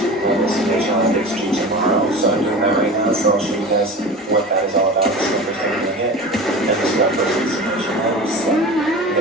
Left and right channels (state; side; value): normal; both; correlation 0.34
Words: tomorrow, so I'm doing that right now, so I'll show you guys what that is all about, the numbers that we're doing it, and this is our first presentation levels, so I'm